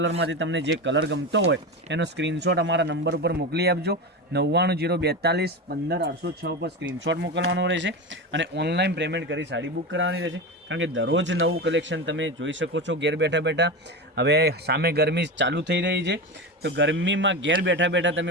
તમને જે કલર ગમતો હોય એનો સ્ક્રીનશોટ અમારા નંબર ઉપર મોકલી આપજો. 990241 15806 પર સ્ક્રીનશોટ મોકલવાનો રહેશે અને ઓનલાઈન પેમેન્ટ કરી સાડી બુક કરવાની રહેશે, કારણ કે દરરોજ નવું કલેક્શન તમે જોઈ શકો છો ઘેર બેઠા બેઠા. હવે સામે ગરમી ચાલુ થઈ રહી છે તો ગરમીમાં ઘેર બેઠા બેઠા તમે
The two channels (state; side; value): normal; both; correlation 0.21